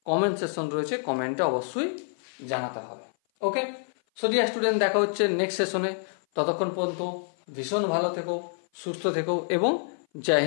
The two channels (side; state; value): right; silent; 56 dB below the other